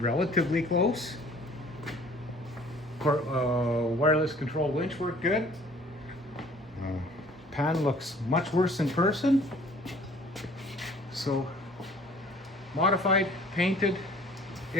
close. Wireless control winch worked good. Pan looks much worse in person. So modified,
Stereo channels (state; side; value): normal; both; correlation 0.53